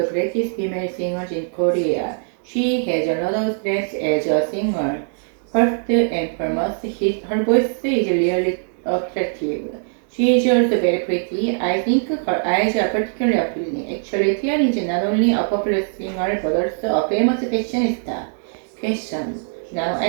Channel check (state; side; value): silent; left; digital silence